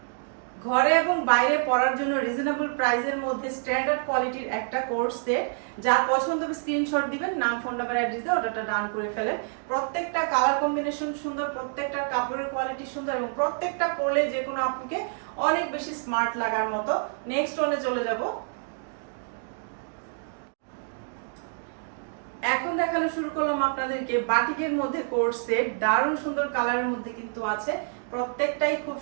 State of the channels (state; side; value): silent; left; 60 dB below the other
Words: ঘরে এবং বাইরে পরার জন্য রিজনেবল প্রাইসের মধ্যে স্ট্যান্ডার্ড কোয়ালিটির একটা কোর্স সেট। যা পছন্দ হবে স্ক্রিনশট দিবেন, নাম ফোন নাম্বার অ্যাড্রেস দিয়ে অর্ডারটা ডান করে ফেলেন। প্রত্যেকটা কালার কম্বিনেশন সুন্দর, প্রত্যেকটার কাপড়ের কোয়ালিটি সুন্দর এবং প্রত্যেকটা পরলে যে কোনো আপুকে অনেক বেশি স্মার্ট লাগার মতো। নেক্সট ওয়ানে চলে যাব। এখন দেখানো শুরু করলাম আপনাদেরকে বাটিকের মধ্যে কোর্স সেট, দারুণ সুন্দর কালারের মধ্যে কিন্তু আছে, প্রত্যেকটাই খুব